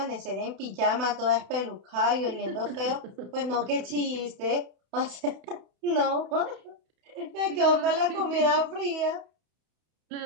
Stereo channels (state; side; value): late; left; 31 ms